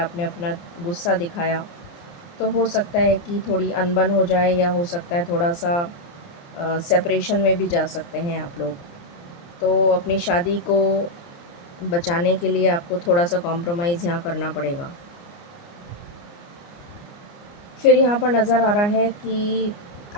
अपना गुस्सा दिखाया तो हो सकता है कि थोड़ी अनबन हो जाए, या हो सकता है थोड़ा सा सेपरेशन में भी जा सकते हैं आप लोग। तो अपनी शादी को बचाने के लिए आपको थोड़ा सा कॉम्प्रोमाइज़ यहाँ करना पड़ेगा। फिर यहाँ पर नज़र आ रहा है कि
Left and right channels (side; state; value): right; late; 29 ms